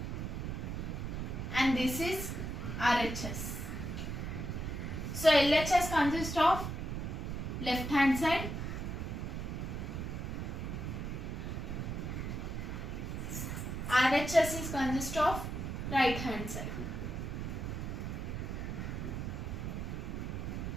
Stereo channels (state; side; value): noise; right; rumble, 4 dB below the sound